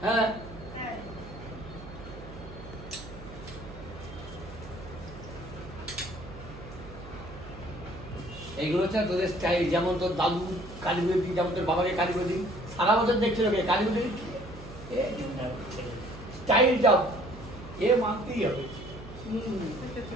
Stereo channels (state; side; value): noise; right; hum, 14 dB below the sound